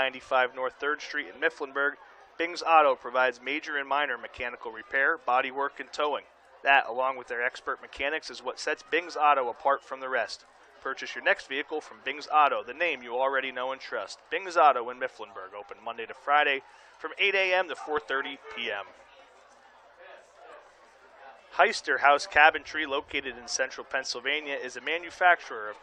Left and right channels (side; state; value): both; identical; correlation 1.00